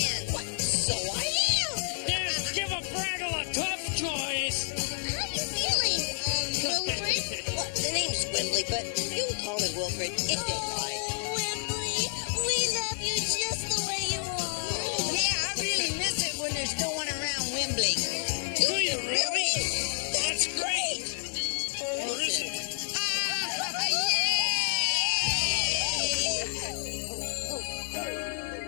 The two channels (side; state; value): right; silent; digital silence